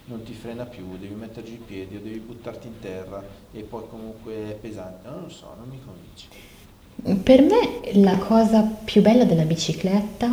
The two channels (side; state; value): both; identical; correlation 1.00